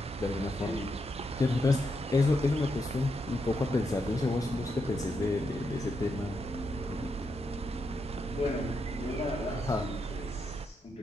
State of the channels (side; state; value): both; normal; correlation 0.82